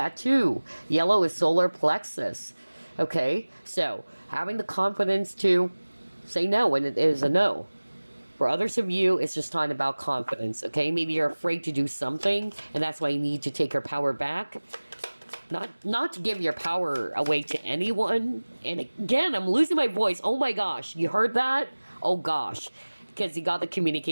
too. Yellow is solar plexus. Okay? So, having the confidence to say no when it is a no. For others of you, it's just talking about confidence, okay? Maybe you're afraid to do something, and that's why you need to take your power back. Not to give your power away to anyone. And again, I'm losing my voice. Oh my gosh, you heard that? Oh gosh, because you got the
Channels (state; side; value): inverted; both; correlation -1.00